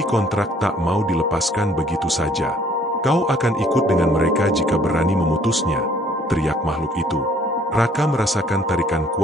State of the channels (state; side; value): normal; both; correlation 0.59